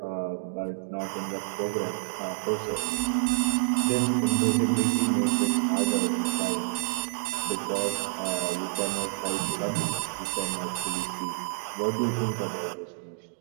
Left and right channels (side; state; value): left; silent; digital silence